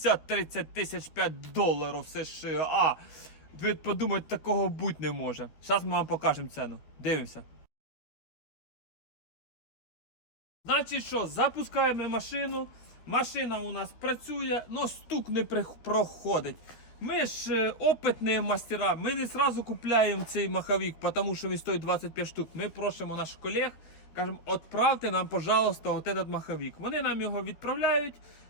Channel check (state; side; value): late; right; 13 ms